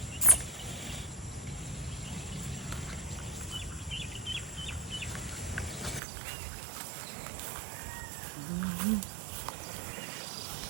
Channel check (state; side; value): drops out; left; at 6.0 s